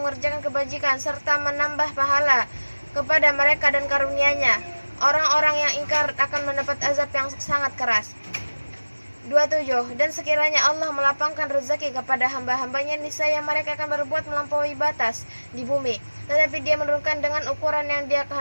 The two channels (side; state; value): both; inverted; correlation -1.00